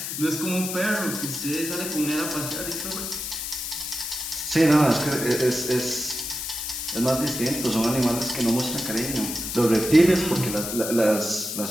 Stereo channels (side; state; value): left; noise; hiss, 5 dB below the sound